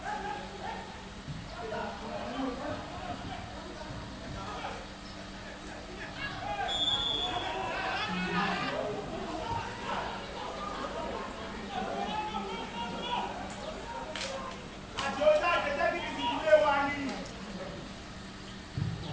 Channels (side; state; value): both; identical; correlation 1.00